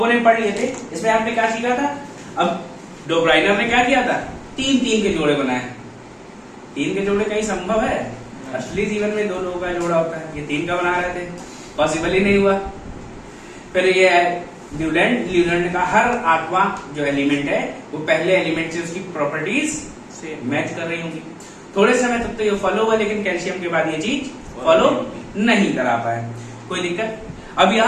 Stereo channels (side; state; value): both; identical; correlation 1.00